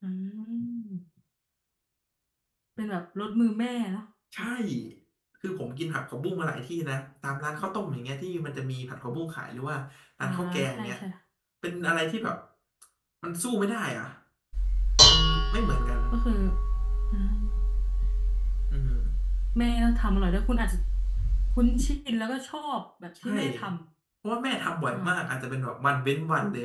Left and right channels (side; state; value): both; identical; correlation 1.00